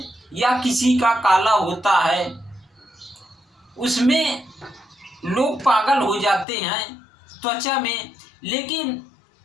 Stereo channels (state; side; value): drops out; right; at 6.5 s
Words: या किसी का काला होता है, उसमें लोग पागल हो जाते हैं त्वचा में। लेकिन